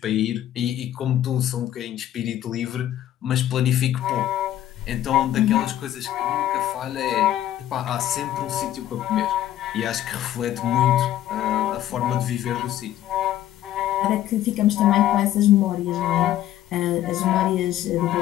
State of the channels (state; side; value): quieter; right; 12.5 dB